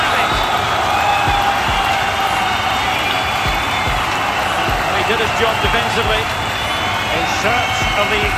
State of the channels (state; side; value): identical; both; correlation 1.00